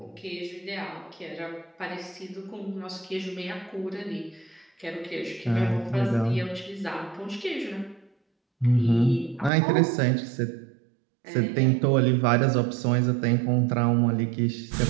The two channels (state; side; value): drops out; left; at 9.5 s